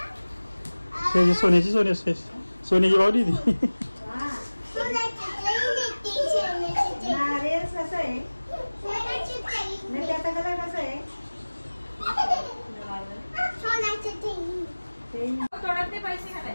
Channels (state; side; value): inverted; both; correlation -1.00